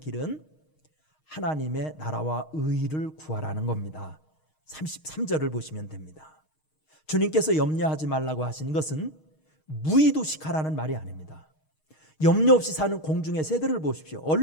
하나님의 나라와 의를 구하라는 겁니다. 33절을 보시면 됩니다. 주님께서 염려하지 말라고 하신 것은 무의도식하라는 말이 아닙니다. 염려 없이 사는 공중의 새들을 보십시오.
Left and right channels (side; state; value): right; late; 6.4 ms